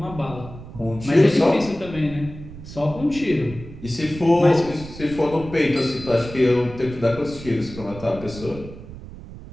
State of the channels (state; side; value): noise; right; rumble, 14 dB below the sound